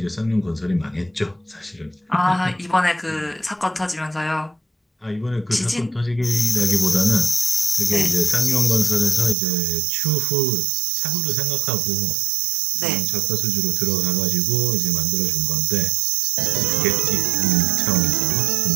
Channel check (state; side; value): drops out; left; at 9.3 s